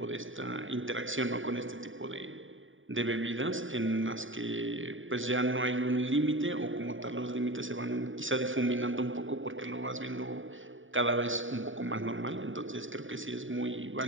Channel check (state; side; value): late; left; 0.57 ms